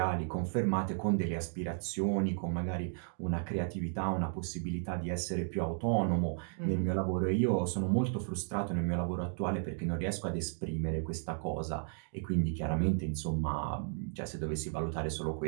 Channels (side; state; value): left; silent; 55 dB below the other